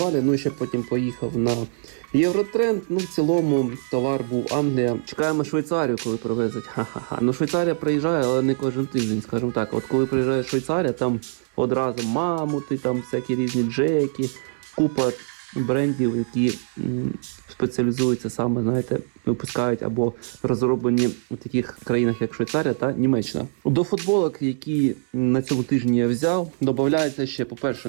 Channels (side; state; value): left; silent; 58 dB below the other